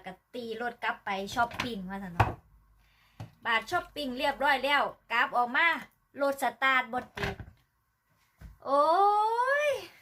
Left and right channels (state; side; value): identical; both; correlation 1.00